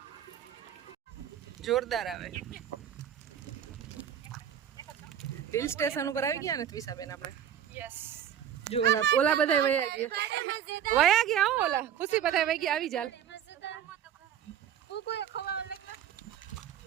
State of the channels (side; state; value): left; quieter; 9.6 dB